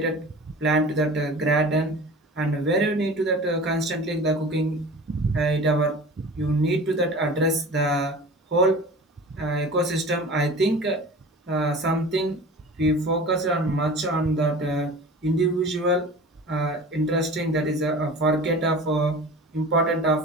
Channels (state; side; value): normal; both; correlation 0.38